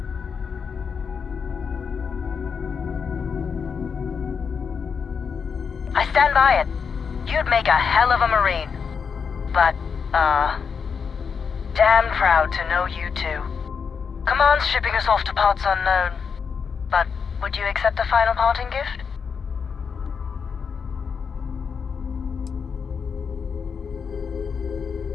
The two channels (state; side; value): quieter; right; 6.2 dB